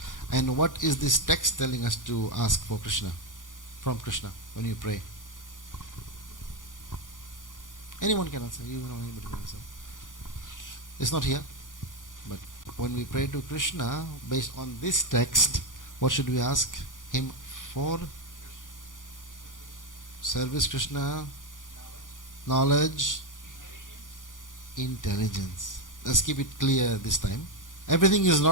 And what is this text telling us to ask for Krishna? From Krishna, when you pray? Anyone can answer. You know, anybody can answer. It's not here. But when we pray to Krishna, based on this text, what should we ask him for? Service Krishna, knowledge, intelligence. Let's keep it clear this time. Everything is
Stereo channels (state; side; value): late; right; 0.88 ms